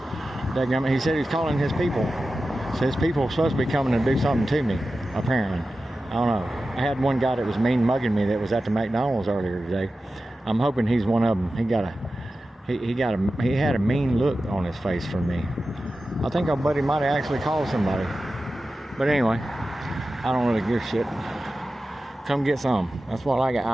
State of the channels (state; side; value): normal; both; correlation 0.93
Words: He said he's calling his people. So his people are supposed to be coming to do something to me, apparently. I don't know. I had one guy that was mean mugging me that was at the McDonald's earlier today. I'm hoping he's one of them. He had a mean look on his face for me. I think our buddy might have actually called somebody. But anyway, I don't really give a shit. Come get some. That's what I got.